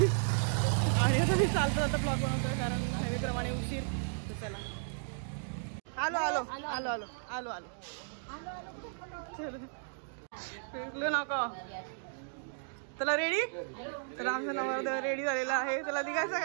आणि आता मी चालतो आता ब्लॉग बनवतोय कारण नेहमीप्रमाणे उशीर. तर चला आलो आलो आलो आलो आलो आलो फिरलो नको. चला रेडी. तर आमचा नवरदेव रेडी झालेला आहे. चला निघायचं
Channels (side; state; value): left; silent; digital silence